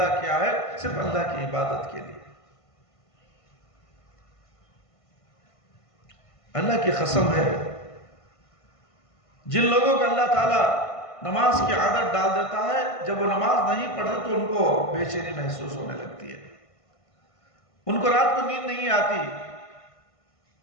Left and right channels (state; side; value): late; right; 1.5 ms